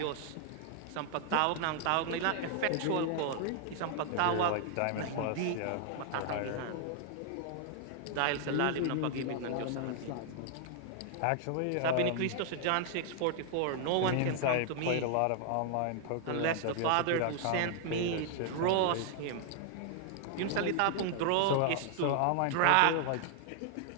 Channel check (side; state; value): both; different; correlation 0.00